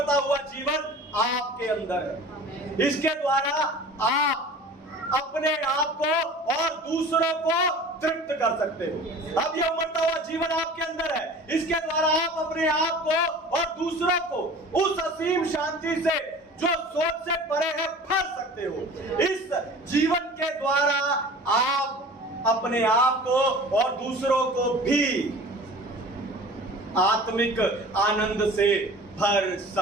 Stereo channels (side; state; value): both; normal; correlation 0.42